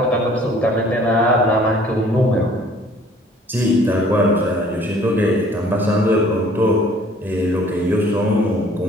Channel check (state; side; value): normal; both; correlation 0.55